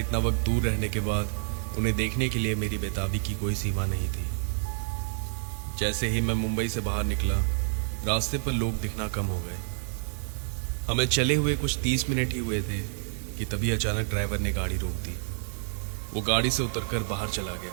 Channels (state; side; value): silent; left; digital silence